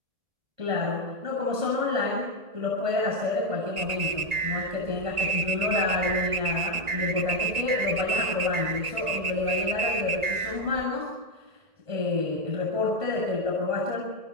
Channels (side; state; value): left; late; 1.9 ms